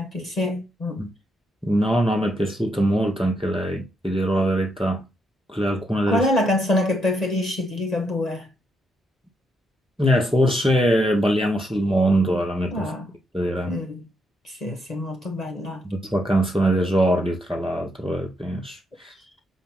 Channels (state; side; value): normal; both; correlation 0.78